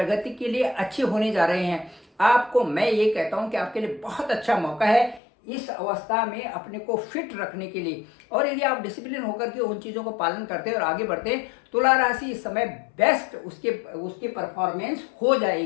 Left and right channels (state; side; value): drops out; right; at 5.2 s